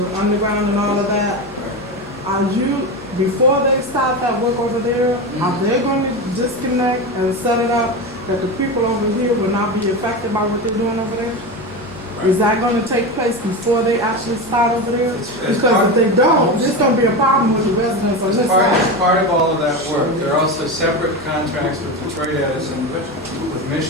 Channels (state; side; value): normal; both; correlation 0.20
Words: underground and all of that, are you, before they start that work over there, are they going to disconnect and set it up that the people over here will not be affected by what they're doing over there? Right. Is that going to take place before they actually start over there? Because if they don't, there's going to be a problem with the residents on this side. As part of all of that work, there are also separate contracts with Detroit Edison, with